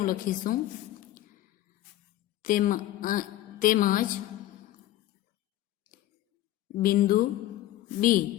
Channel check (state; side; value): quieter; right; 14.4 dB